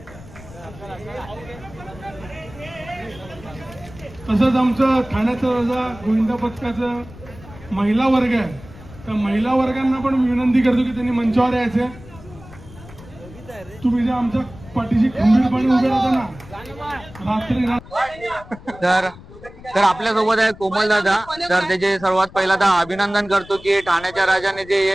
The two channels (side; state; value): left; noise; rumble, 19 dB below the sound